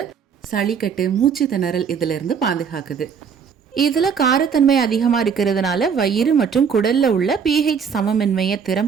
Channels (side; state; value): left; quieter; 6.6 dB